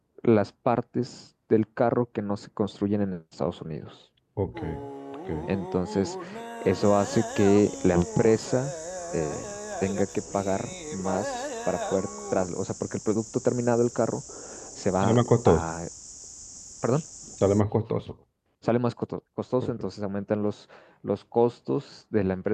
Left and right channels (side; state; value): both; identical; correlation 1.00